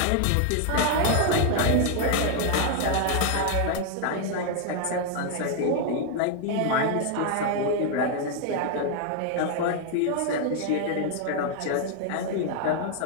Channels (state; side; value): different; both; correlation 0.00